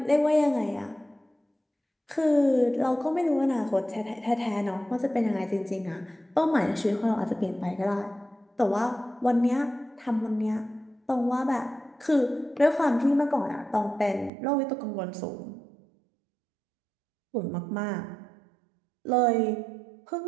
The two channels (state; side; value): drops out; left; at 14.3 s